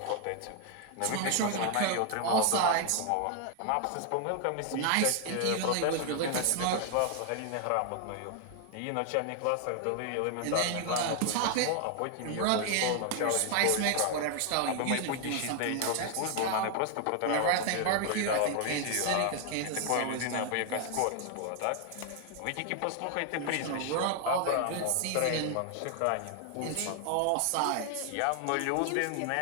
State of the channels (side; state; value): both; different; correlation 0.00